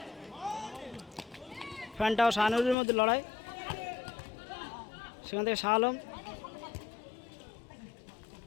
ফ্যানটাও শাহানুরের মধ্যে লড়াই, সেখান থেকে শাহ আলম,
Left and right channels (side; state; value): right; drops out; at 2.8 s